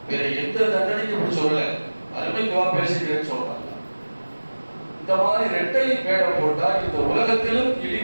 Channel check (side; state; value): both; inverted; correlation -1.00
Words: வேற எந்த தண்டனைக்கு இப்படி சொல்ல, அருமைக்குவா பேசுகிறேன்னு சொல்றாங்க. இந்த மாதிரி இரட்டை வேடம் போட்டா இந்த உலகத்திலும்